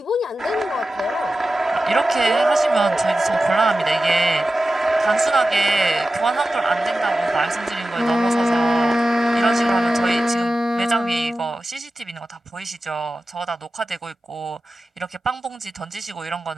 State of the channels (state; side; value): normal; both; correlation 0.94